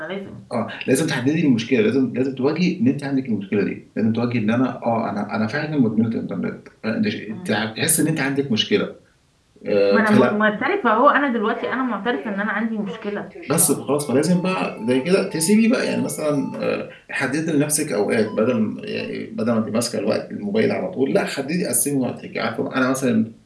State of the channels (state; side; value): identical; both; correlation 1.00